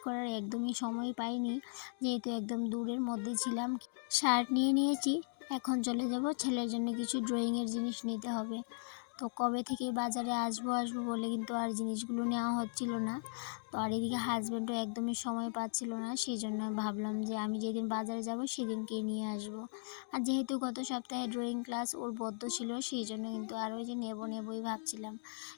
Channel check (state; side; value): silent; right; digital silence